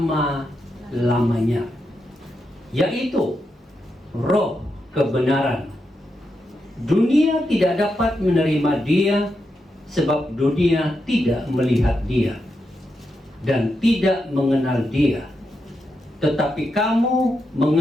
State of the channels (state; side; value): normal; both; correlation 0.85